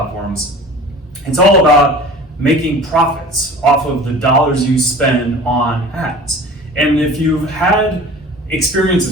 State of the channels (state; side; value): normal; both; correlation 0.41